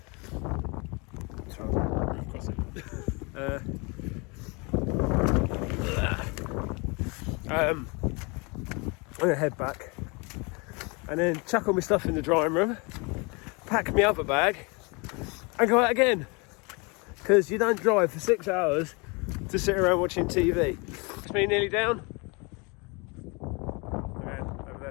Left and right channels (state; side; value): quieter; right; 29.7 dB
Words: I'm going to head back and then chuck all my stuff in the drying room, pack my other bag and go out again, because you don't drive for 6 hours to sit around watching TV. It's me nearly down. Okay, over